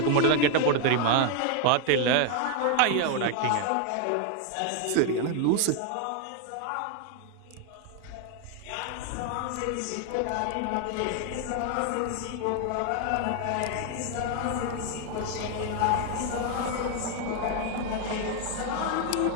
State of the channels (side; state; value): both; different; correlation 0.00